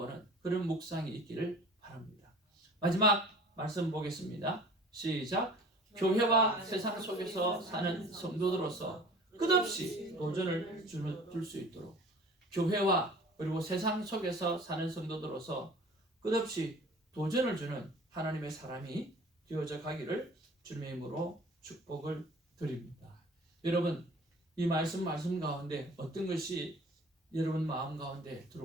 그런 묵상이 있기를 바랍니다. 마지막 말씀 보겠습니다. 시작. 교회와 세상 속에서 사는 성도들로서 끝없이 도전을 줄 수 있도록 교회와 그리고 세상 속에서 사는 성도들로서 끝없이 도전을 주는 하나님의 사람이 되어져 가기를 주님의 이름으로 축복을 드립니다. 여러분 이 말씀 가운데 어떤 것이 여러분 마음 가운데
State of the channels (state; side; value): normal; both; correlation 0.46